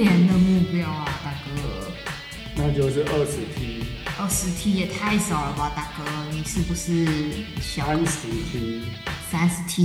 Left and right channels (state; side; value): identical; both; correlation 1.00